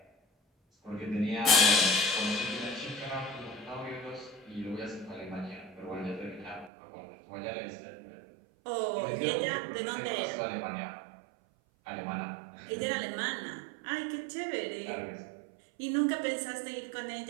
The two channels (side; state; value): left; drops out; at 6.7 s